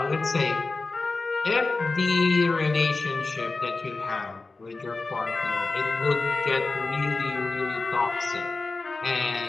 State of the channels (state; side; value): quieter; right; 3.6 dB